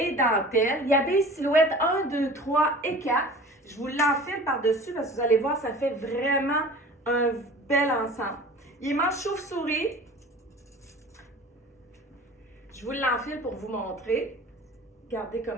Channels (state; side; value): normal; both; correlation 0.41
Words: dentelle. Il habille silhouette 1, 2, 3 et 4. Je vous l'enfile par-dessus parce que vous allez voir, ça fait vraiment un bel ensemble. Il est manche chauve-souris. Je vous l'enfile pour vous montrer. Regardez